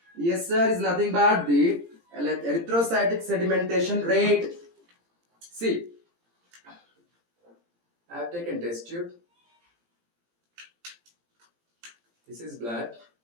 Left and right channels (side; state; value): left; late; 17 ms